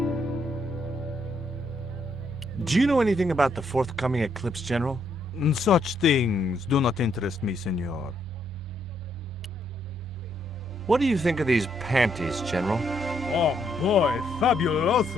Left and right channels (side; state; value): both; normal; correlation 0.74